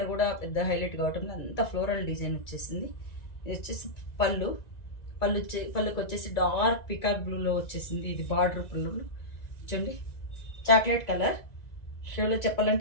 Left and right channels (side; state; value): right; late; 1.9 ms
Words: కూడా పెద్ద హైలైట్ కావటం, అంతా ఫ్లోరల్ డిజైన్ వచ్చేసింది. ఇది వచ్చేసి పళ్ళుకి వచ్చేసి డార్క్ పికాక్ బ్లూలో వచ్చేసింది. ఇది బార్డర్ పళ్ళు చూడండి, చాక్లెట్ కలర్ షేడ్లో